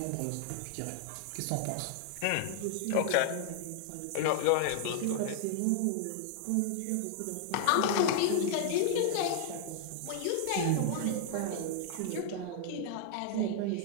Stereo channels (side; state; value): both; different; correlation 0.00